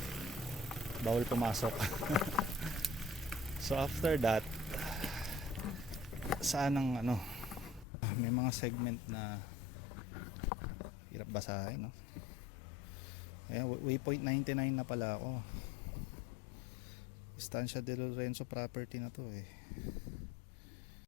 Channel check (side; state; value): right; drops out; at 7.9 s